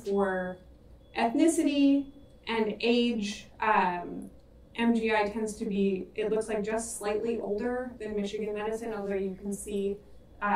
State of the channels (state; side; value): identical; both; correlation 1.00